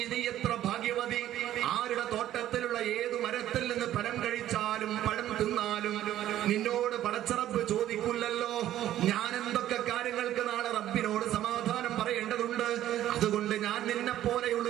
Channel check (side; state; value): left; quieter; 12.7 dB